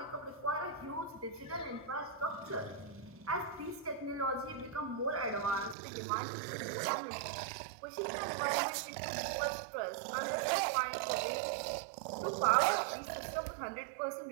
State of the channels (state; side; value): drops out; left; at 5.8 s